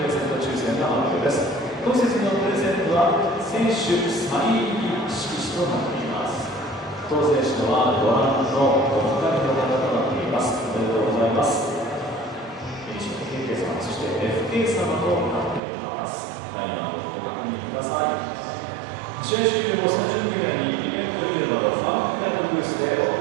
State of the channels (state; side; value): drops out; left; at 15.6 s